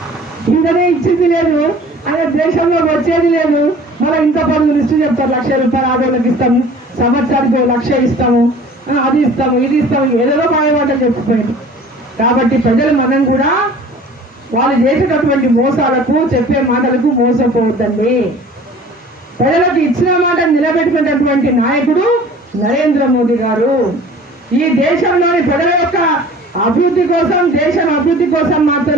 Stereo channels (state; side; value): normal; both; correlation 0.46